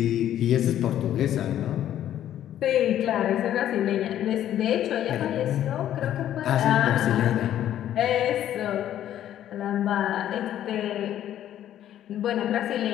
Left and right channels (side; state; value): right; quieter; 11.5 dB